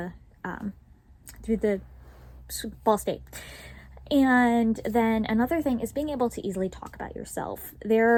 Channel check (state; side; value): identical; both; correlation 1.00